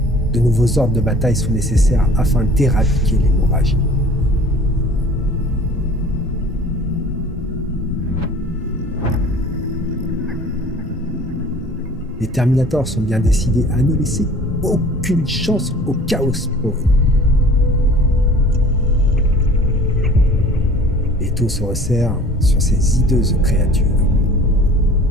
de nouveaux ordres de bataille sont nécessaires afin d'éradiquer l'hémorragie. Les Terminators sont bien décidés à ne laisser aucune chance au Chaos Spawn. L'étau se resserre sur ces hideuses créatures.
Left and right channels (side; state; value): both; normal; correlation 0.47